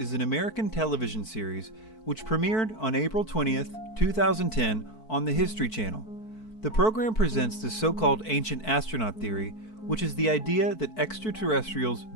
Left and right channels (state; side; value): late; right; 4.5 ms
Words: an American television series which premiered on April 20th, 2010 on the History Channel. The program presents the so-called ancient astronaut theory, which is the idea that extraterrestrials